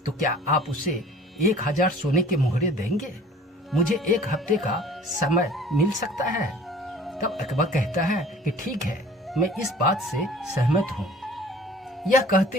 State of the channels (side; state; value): both; normal; correlation 0.48